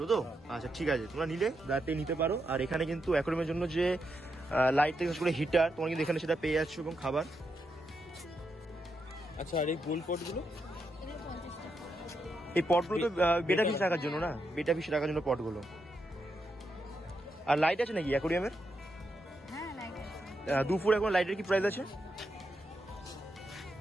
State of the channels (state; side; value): normal; both; correlation 0.83